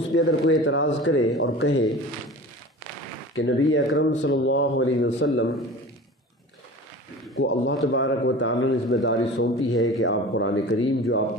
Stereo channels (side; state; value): both; normal; correlation 0.37